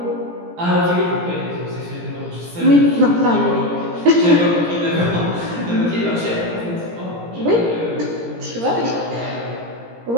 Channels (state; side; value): late; left; 17 ms